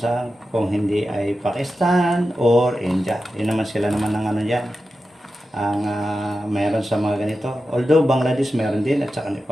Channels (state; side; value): normal; both; correlation 0.92